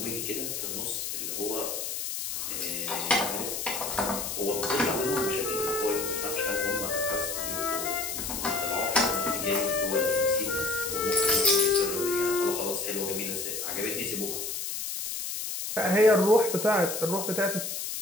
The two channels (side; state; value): left; noise; hiss, 4 dB below the sound